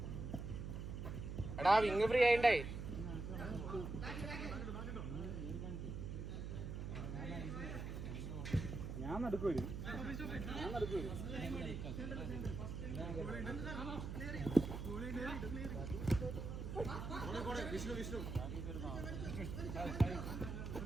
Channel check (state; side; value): noise; right; hum, 5 dB below the sound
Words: എടാ വിങ് ഫ്രീ ആയിണ്ടേ. ഞാൻ നടക്കൂ.